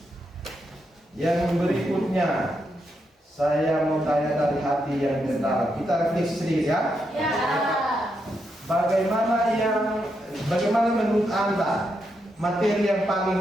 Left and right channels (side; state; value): both; normal; correlation 0.82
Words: Yang berikutnya, saya mau tanya dari hati yang terdalam. Kita refleksi sedikit ya. ya. Bagaimana menurut Anda materi yang paling